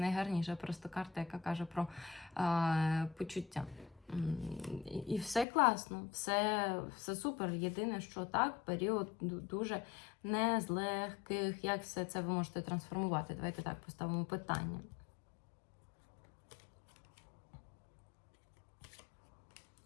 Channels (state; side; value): drops out; right; at 5.5 s